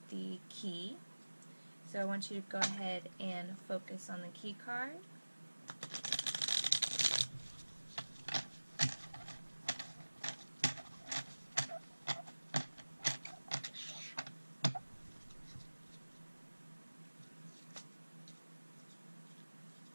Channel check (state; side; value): inverted; both; correlation -1.00